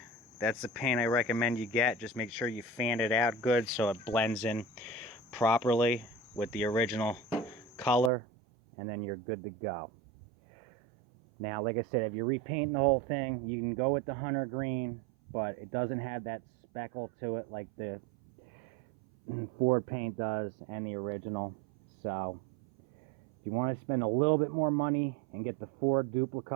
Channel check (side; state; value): left; drops out; at 8.1 s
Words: that's the paint I recommend you get. Just make sure you fan it out good so it blends in properly with the original color, and then you're good to go. Now, like I said, if you're repainting the whole thing, you can go with the hunter green, but it doesn't have that speckle to it like the Ford paint does and the original. So if you want to spend a little bit more money and get the Ford Dupli